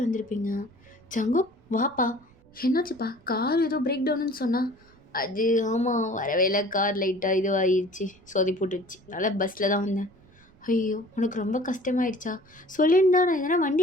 வந்திருப்பீங்க. ஜங்கு வாப்பா, என்னாச்சுப்பா, கார் ஏதோ பிரேக் டவுன்னு சொன்னா. அது ஆமாம், வரவே இல்லை, கார் லைட்டாக இதுவாகிடுச்சு, சொதி போட்டுடுச்சு, அதனால் பஸ்ஸில் தான் வந்தேன். ஐயோ உனக்கு ரொம்ப கஷ்டமாயிடுச்சா, சொல்லியிருந்தா நான் எதனா வண்டி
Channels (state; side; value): noise; right; rumble, 28 dB below the sound